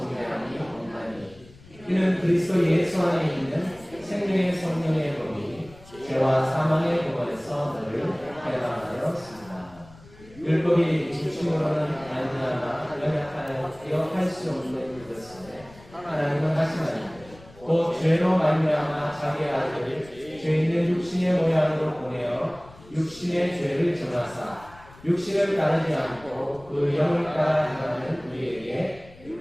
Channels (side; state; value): left; noise; rumble, 22 dB below the sound